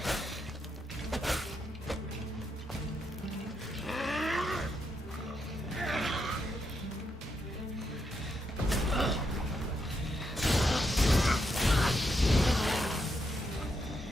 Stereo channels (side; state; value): both; normal; correlation 0.81